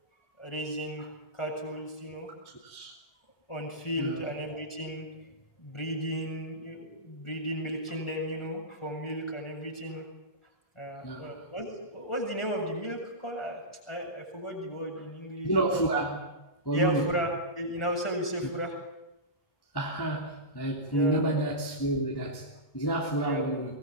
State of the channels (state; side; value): late; right; 1.4 ms